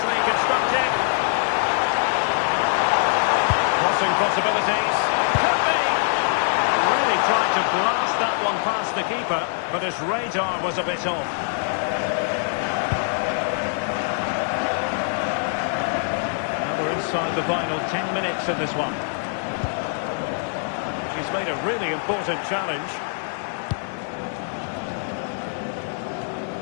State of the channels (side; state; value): right; silent; 63 dB below the other